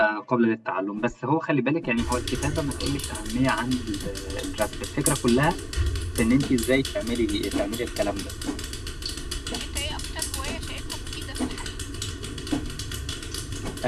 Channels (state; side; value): identical; both; correlation 1.00